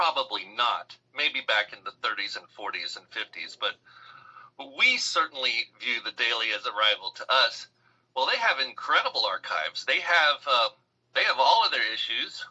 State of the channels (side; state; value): both; identical; correlation 1.00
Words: not. Maybe back in the 30s and 40s and 50s, but we certainly view the Daily as a rival to us. Well, they have incredible archives. They have all of their issues,